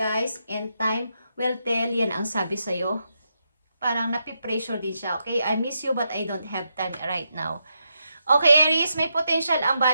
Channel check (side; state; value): both; inverted; correlation -0.83